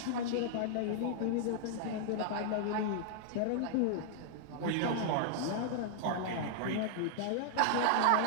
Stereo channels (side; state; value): both; different; correlation -0.01